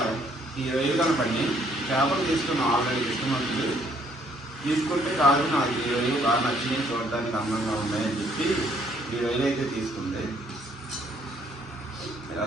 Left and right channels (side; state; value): both; normal; correlation 0.66